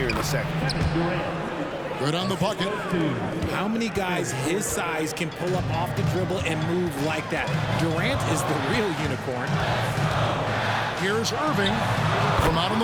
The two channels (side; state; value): both; identical; correlation 1.00